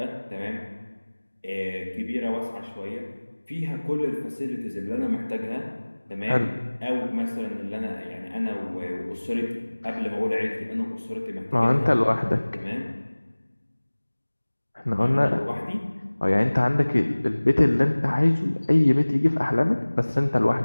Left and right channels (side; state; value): both; inverted; correlation -1.00